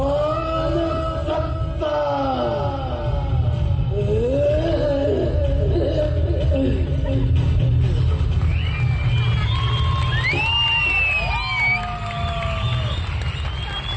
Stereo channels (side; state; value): both; identical; correlation 1.00